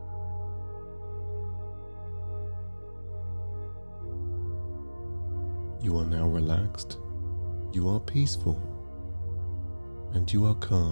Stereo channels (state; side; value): inverted; both; correlation -1.00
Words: You are now relaxed, you are peaceful, and you are